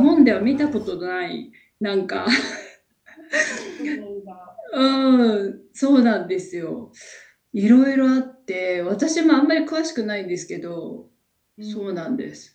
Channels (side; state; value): both; identical; correlation 1.00